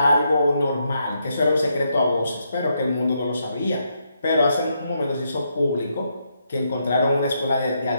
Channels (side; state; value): both; inverted; correlation -0.79